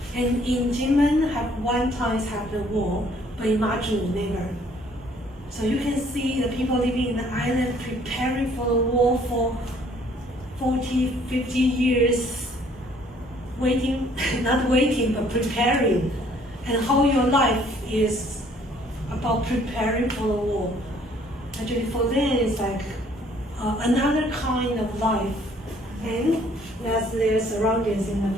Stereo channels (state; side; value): normal; both; correlation 0.61